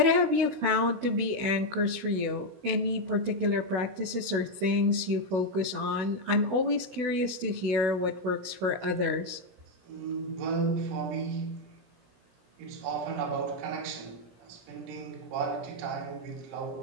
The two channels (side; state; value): left; late; 16 ms